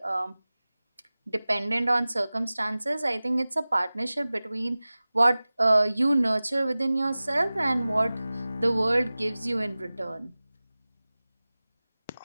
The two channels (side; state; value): both; inverted; correlation -0.98